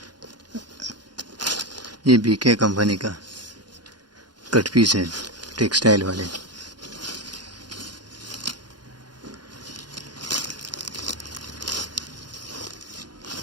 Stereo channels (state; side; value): late; left; 0.70 ms